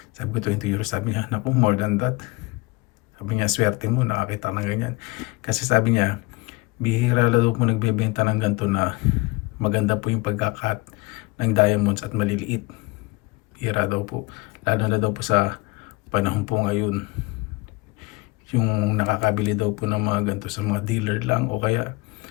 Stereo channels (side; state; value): right; quieter; 24.0 dB